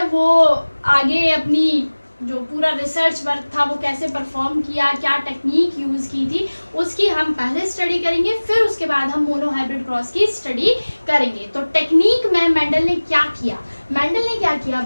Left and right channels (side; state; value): both; inverted; correlation -1.00